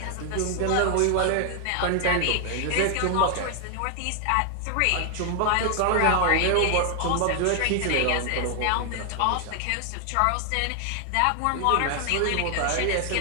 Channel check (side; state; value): both; different; correlation 0.00